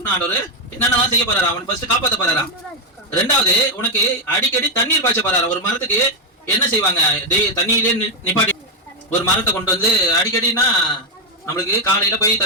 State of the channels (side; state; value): both; normal; correlation 0.03